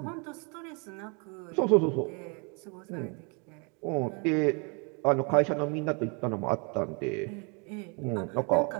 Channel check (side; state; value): left; quieter; 34.5 dB